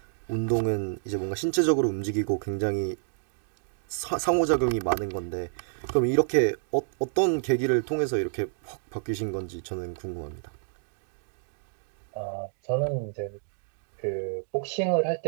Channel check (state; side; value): silent; left; digital silence